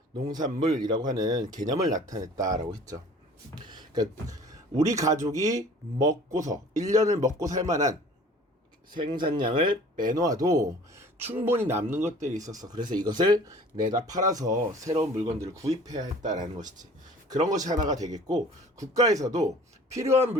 농산물이라고 하는 개념을 나타냈다라고 했죠. 그러니까 우리 가족이 먹고서 1년을 먹고 살 만한 생산량을 빼놓아도 충분히 남는 것들이 있었어. 그래서 이것을 내다 팔아서 새로운 물건들을 구입해야 했다라는 것이지. 그런 것이 하나가 되겠고, 국가에서도 필요한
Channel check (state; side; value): normal; both; correlation 0.48